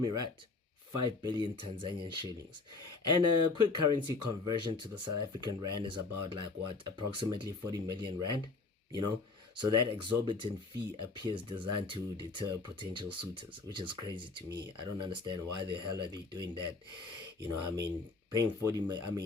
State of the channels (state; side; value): quieter; right; 3.9 dB